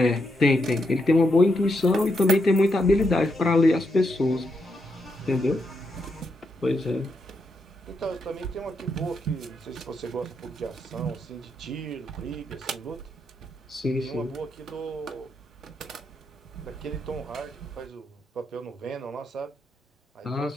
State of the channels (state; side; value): normal; both; correlation 0.81